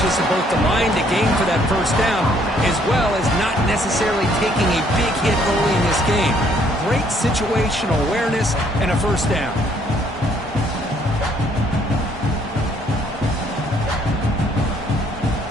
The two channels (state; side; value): normal; both; correlation 0.65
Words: of both the line to gain for that first down, as well as not necessarily taking a big hit early in this game. Great situational awareness and a first down.